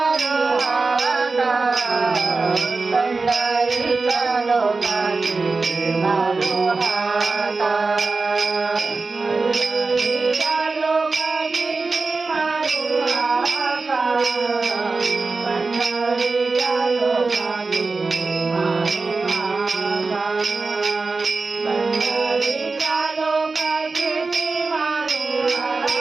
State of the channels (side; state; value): left; quieter; 3.9 dB